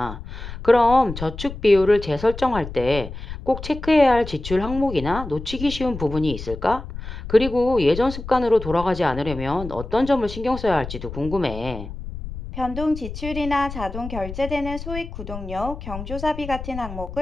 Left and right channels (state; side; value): noise; left; rumble, 10 dB below the sound